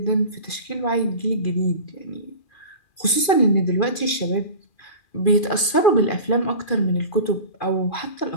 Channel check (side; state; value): right; late; 2.4 ms